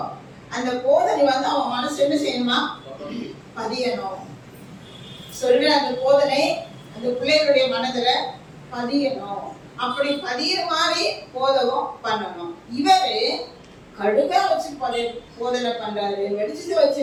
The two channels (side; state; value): both; identical; correlation 1.00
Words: அந்த போதனை அவன் மனசு என்ன செய்யணுமா? பதியணும். சொல்ற அந்த போதனை அந்த பிள்ளைகளுடைய மனதுல பதியணும். அப்படி பதியிற மாதிரி போதகம் பண்ணணும். இவரு கடுகா வச்சு போதனை பண்றாரு, வெடிச்சதை வச்சு